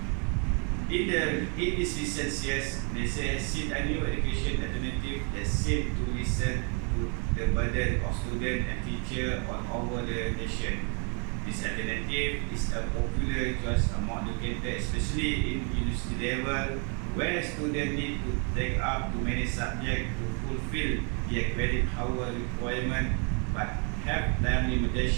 In this recent years, they has seen a new education alternative that seems to listen to the burden of students and teachers all over the nation. This alternative is a popular choice among educators, especially in university level, where students need to take up too many subjects to fulfill their credit hour requirement, but have time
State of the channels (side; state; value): left; quieter; 37.9 dB